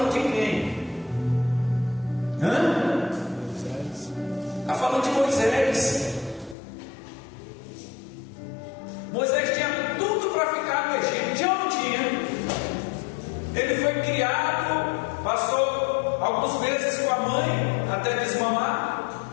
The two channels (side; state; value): right; drops out; at 6.6 s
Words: de quem? Está falando de Moisés. Moisés tinha tudo para ficar no Egito, tinha ou não tinha? Ele foi criado, passou alguns meses com a mãe até desmamar.